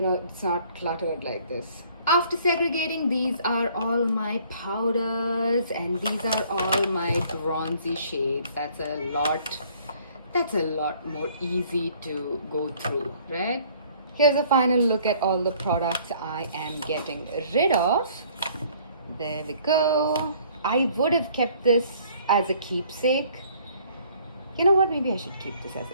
know, it's not cluttered like this. After segregating, these are all my powders and these are all my bronzy shades. That's a lot more easy to go through, right? Here's a final look at all the products I am getting rid of. There we go. I would have kept this as a keepsake. You know what, maybe I should keep this as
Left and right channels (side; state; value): both; inverted; correlation -0.58